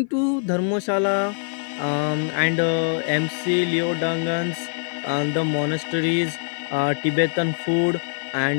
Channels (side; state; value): right; silent; 56 dB below the other